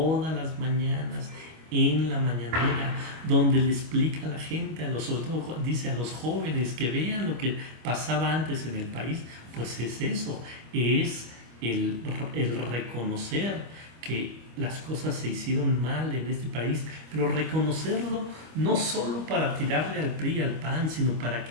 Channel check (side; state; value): left; late; 25 ms